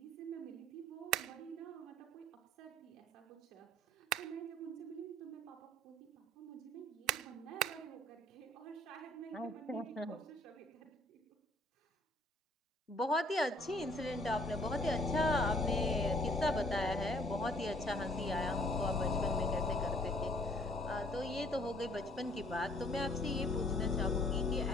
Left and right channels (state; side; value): normal; both; correlation 0.59